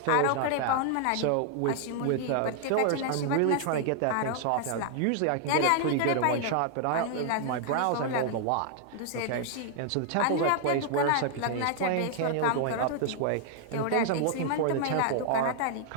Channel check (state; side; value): different; both; correlation 0.00